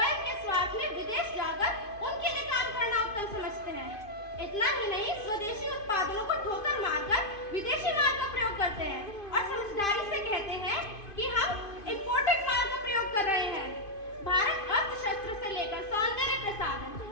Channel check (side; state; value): right; late; 2.5 ms